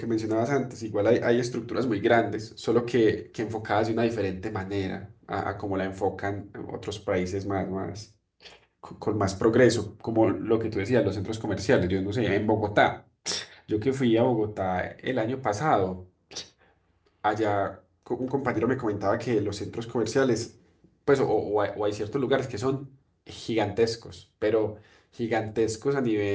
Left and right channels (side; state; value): both; identical; correlation 1.00